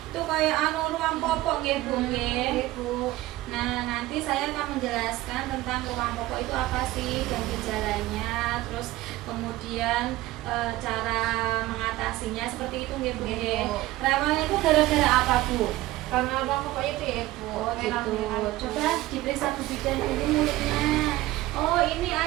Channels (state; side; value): quieter; left; 17.1 dB